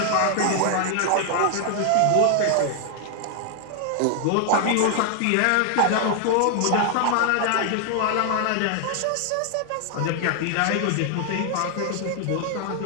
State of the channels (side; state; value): both; different; correlation 0.00